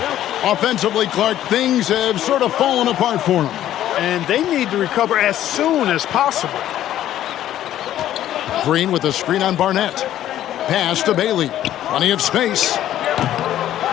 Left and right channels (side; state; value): right; quieter; 12.3 dB